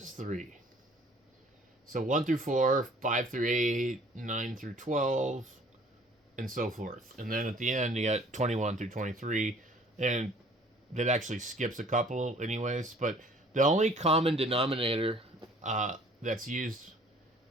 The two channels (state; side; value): normal; both; correlation 0.54